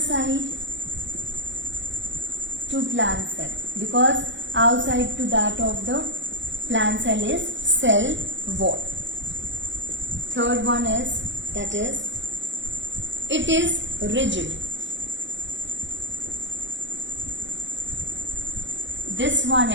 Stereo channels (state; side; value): late; left; 0.54 ms